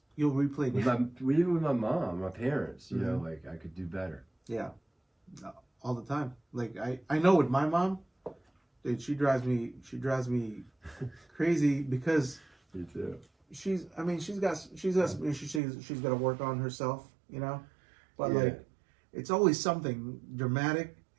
you'll replay even with my mom, my parents. I could do better. Yeah, all the time. I know with my mom, dude, she drives me crazy because Me too. she's got to work on herself, but it's always something dramatic,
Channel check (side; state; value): left; drops out; at 15.6 s